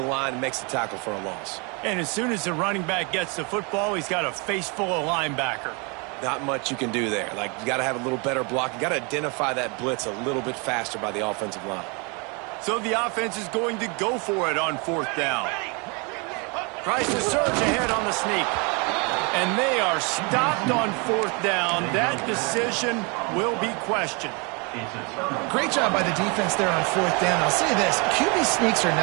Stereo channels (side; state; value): left; quieter; 31.8 dB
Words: and makes the tackle for a loss. And as soon as the running back gets the football, he's got a face full of linebacker. Not much you can do there. Like, you got to have a little better block. You got to identify that blitz a little bit faster by the offensive line. So the offense is going to go for it on fourth down. Tries to surge ahead on the sneak. And they are stopped on 4th down. That decision will be questioned. Great job by the defense there on 4th down. I'll say this, QB sneaks are